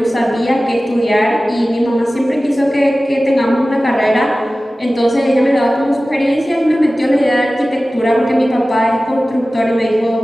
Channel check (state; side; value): normal; both; correlation 0.96